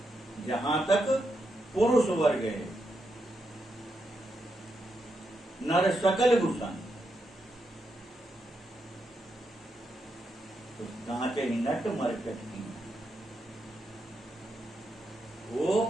जहां तक पुरुष वर्ग है, नर सकल गुसाई, तो नाचे नट मरकट की। वो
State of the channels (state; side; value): normal; both; correlation 0.83